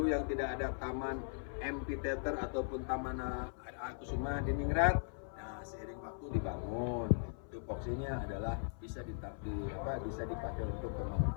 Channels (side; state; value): right; silent; 52 dB below the other